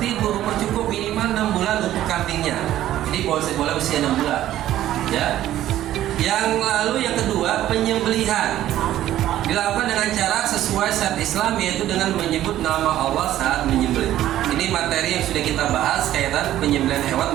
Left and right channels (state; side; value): quieter; left; 13.1 dB